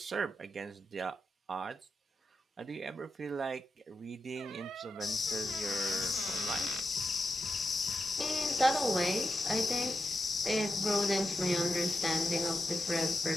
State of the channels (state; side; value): normal; both; correlation 0.88